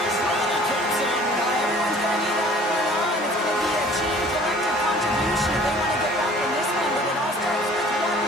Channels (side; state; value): both; normal; correlation 0.51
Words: running. Comes in. Everyone's going to need that going on. It's going to be a team collective contribution if they want to get back in this one, but it all starts with one